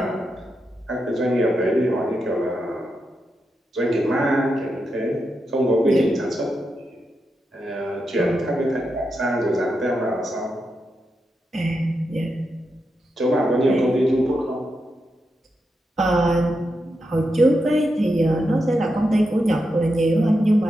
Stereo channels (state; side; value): normal; both; correlation 0.86